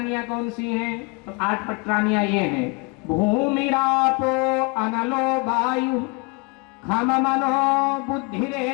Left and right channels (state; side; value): quieter; right; 29.9 dB